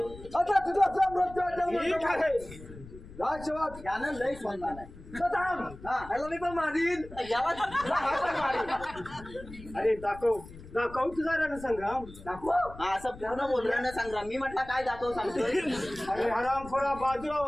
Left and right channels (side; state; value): left; noise; rumble, 16 dB below the sound